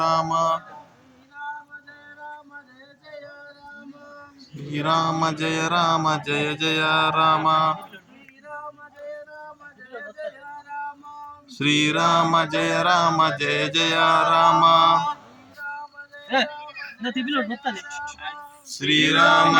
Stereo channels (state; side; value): identical; both; correlation 1.00